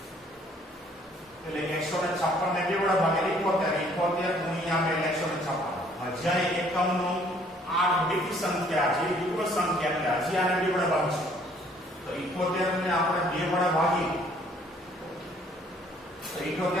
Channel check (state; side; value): normal; both; correlation 0.61